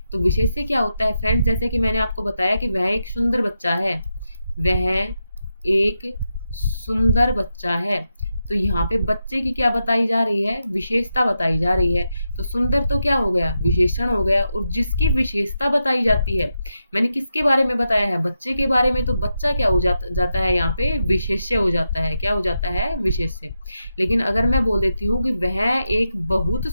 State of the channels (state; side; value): inverted; both; correlation -0.87